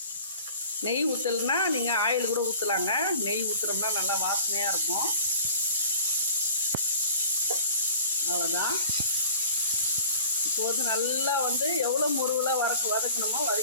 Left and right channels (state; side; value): inverted; both; correlation -0.45